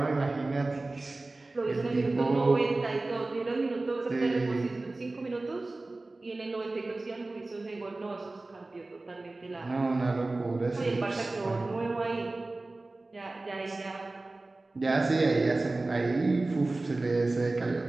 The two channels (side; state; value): left; quieter; 3.1 dB